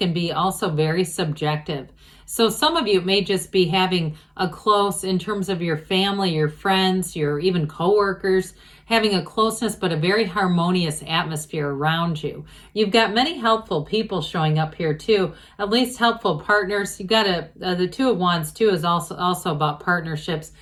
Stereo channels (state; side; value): identical; both; correlation 1.00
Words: be also very subjective. So some of you may just be having a close, in terms of your family, your friends, your even coworkers, having a closeness but a very harmonious atmosphere around you. You've got many helpful people showing up here too, at least helpful partners. You've got the Two of Wands too is also about partnerships.